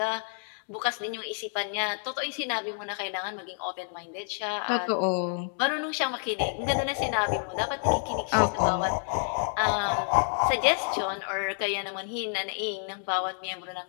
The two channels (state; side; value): silent; right; 57 dB below the other